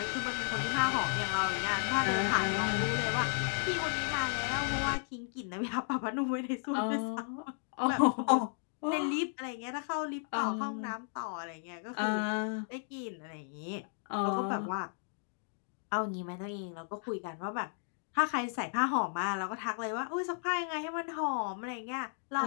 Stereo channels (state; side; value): silent; right; digital silence